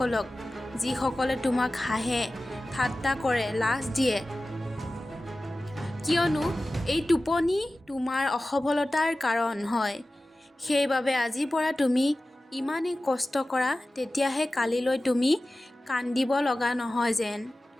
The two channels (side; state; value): both; normal; correlation 0.96